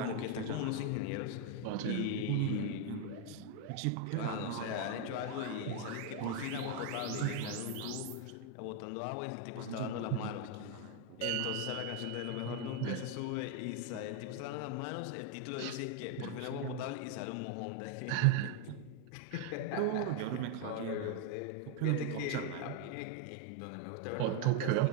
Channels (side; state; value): both; different; correlation 0.01